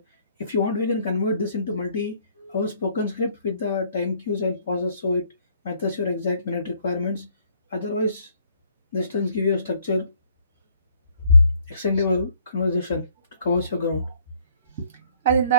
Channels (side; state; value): both; inverted; correlation -0.63